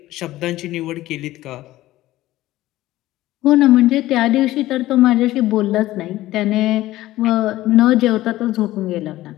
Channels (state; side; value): quieter; right; 16.0 dB